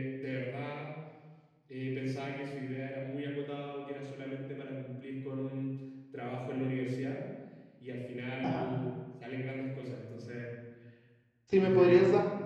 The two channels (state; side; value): identical; both; correlation 1.00